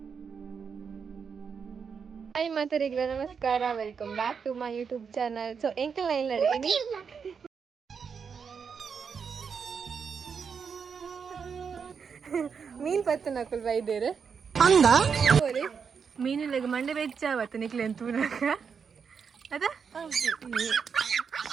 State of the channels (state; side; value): quieter; left; 6.3 dB